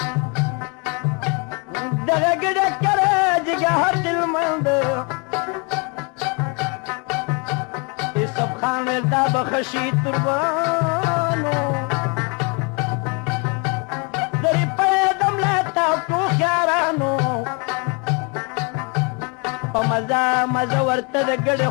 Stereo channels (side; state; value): right; quieter; 33.0 dB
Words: دغه ګډه که راجېږه هر دلمند یوسف خان ویل دا به ښه شي تربانو درې پیدم له تاکو خیارانو په مزه مزه ورته د ګډې